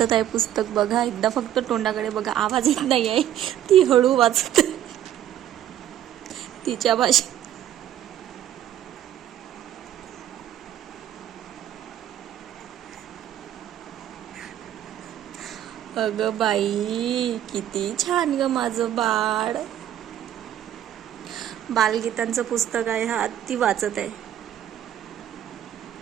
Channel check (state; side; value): quieter; left; 11.3 dB